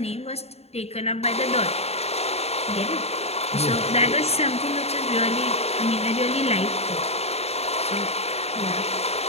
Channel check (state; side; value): late; right; 0.30 ms